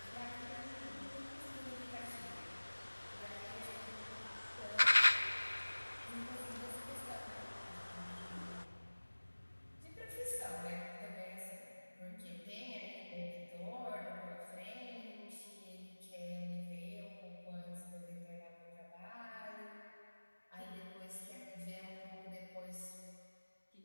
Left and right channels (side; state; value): both; inverted; correlation -1.00